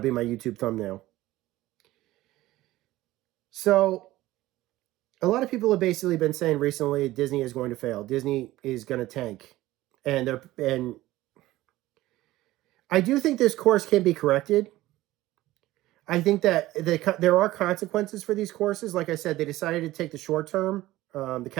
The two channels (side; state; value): left; quieter; 16.7 dB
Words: my YouTube thumbnail. So, a lot of people have basically been saying recently Disney is going to fail. Disney is going to tank. And I do think this course can be corrected. I think that there are consequences for these courses. Like I said, they decided to take the short term, the